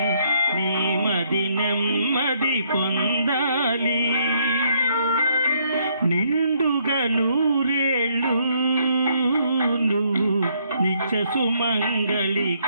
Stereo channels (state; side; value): inverted; both; correlation -0.70